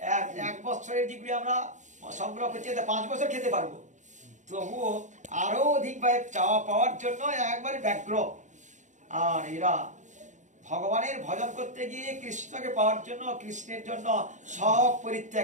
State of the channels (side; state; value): left; late; 0.35 ms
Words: এক বছরের ডিগ্রি আমরা সংগ্রহ করছি, 5 বছর খেতে পারবো, তবুও আরো অধিকভাবে চাওয়া পাওয়ার জন্য একবারে ব্যগ্র। আর এরা ভগবানের ভজন করতে গিয়ে কৃষ্ণকে পাওয়ার জন্য, কৃষ্ণের জন্য সব